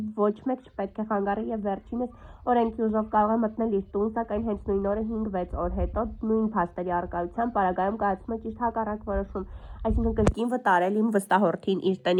ոչ մեկ չպետք է խանգարի և վերջինս օրենքի ուժով կարող է մտնել իր տուն, սակայն հենց նույն օրը 5-6 օր հետո նույն փաստերի առկայությամբ պարագայում կայացում է ճիշտ հակառակ որոշում, այսինքն կրկին վտարել իմ վստահորդին իր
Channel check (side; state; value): both; identical; correlation 1.00